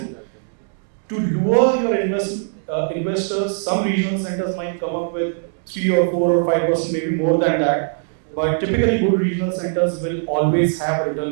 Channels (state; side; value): silent; left; digital silence